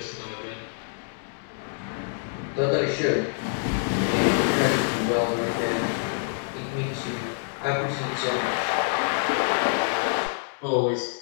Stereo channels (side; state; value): right; silent; digital silence